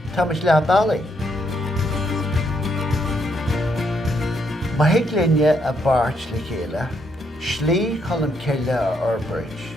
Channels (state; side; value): normal; both; correlation 0.75